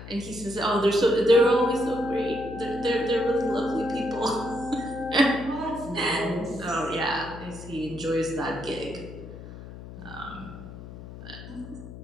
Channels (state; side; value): noise; left; hum, 13 dB below the sound